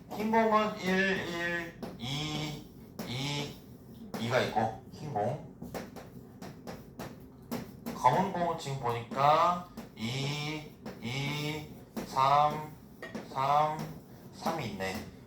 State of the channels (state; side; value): identical; both; correlation 1.00